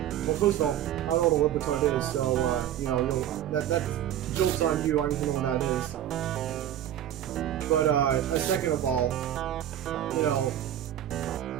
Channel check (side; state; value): left; quieter; 11.2 dB